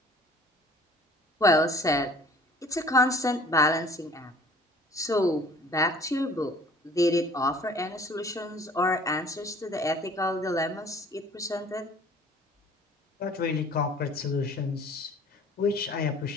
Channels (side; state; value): both; normal; correlation 0.51